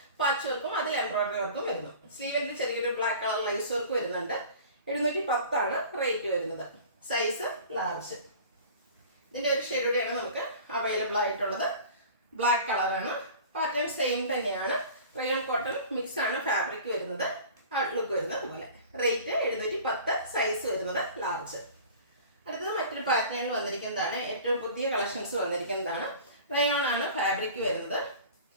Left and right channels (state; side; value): inverted; both; correlation -0.42